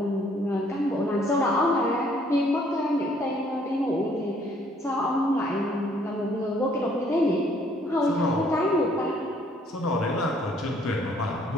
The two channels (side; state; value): both; normal; correlation 0.63